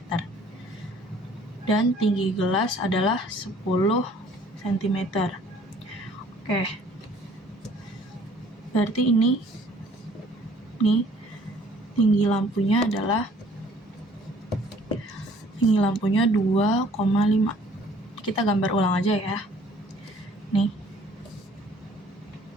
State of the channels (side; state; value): both; normal; correlation 0.56